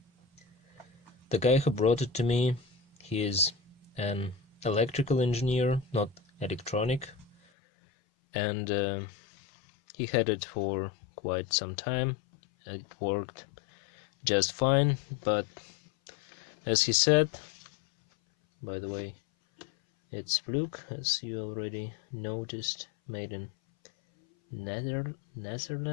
The guy who brought it to me, he is an electrical engineer, not electronic, and he had it for quite some time. It worked just fine, but as he said, by the way, it's Fluke, as you already noticed, made in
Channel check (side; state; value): right; drops out; at 7.4 s